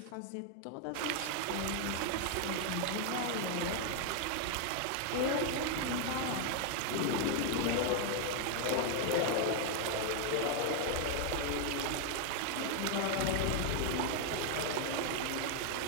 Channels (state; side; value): different; both; correlation 0.00